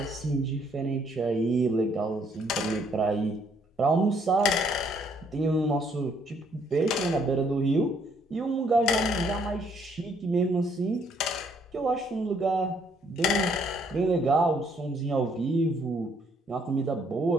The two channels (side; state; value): both; normal; correlation 0.67